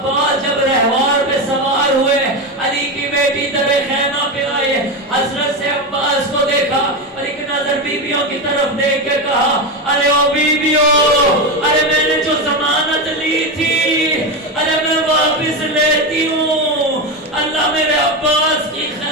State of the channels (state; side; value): normal; both; correlation 0.15